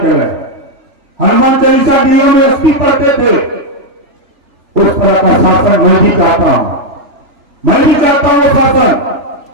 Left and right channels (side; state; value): left; late; 3.4 ms